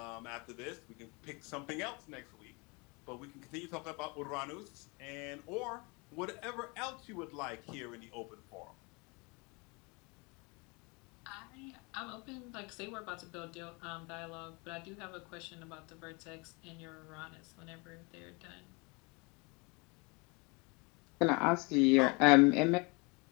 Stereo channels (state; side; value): quieter; right; 28.9 dB